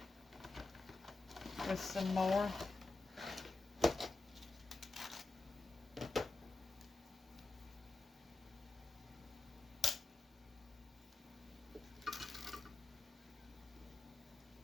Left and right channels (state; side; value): quieter; right; 3.5 dB